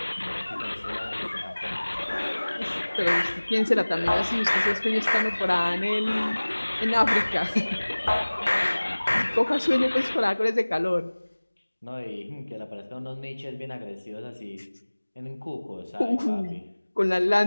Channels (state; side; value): inverted; both; correlation -1.00